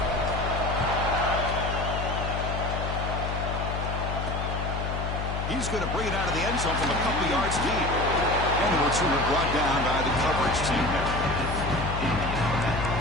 He's going to bring it out of the end zone from a couple yards deep. And the returner brought down by the coverage team there.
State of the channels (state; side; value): noise; left; hum, 3 dB below the sound